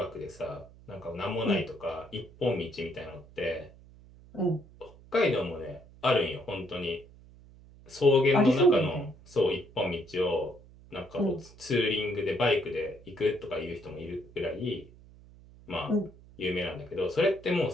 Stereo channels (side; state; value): right; noise; hum, 22 dB below the sound